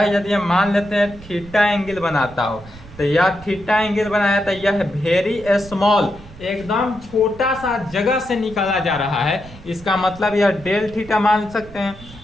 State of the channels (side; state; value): right; noise; rumble, 19 dB below the sound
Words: यदि हम मान लेते हैं थीटा एंगल बनाता हो, तो यह थीटा एंगल बनाया था, यह वेरी स्मॉल, एकदम छोटा सा जगह से निकाला जा रहा है। इसका मतलब यह डेल थीटा मान सकते हैं,